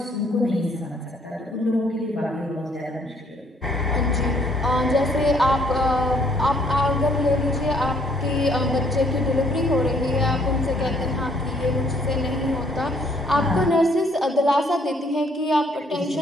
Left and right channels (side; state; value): both; normal; correlation 0.64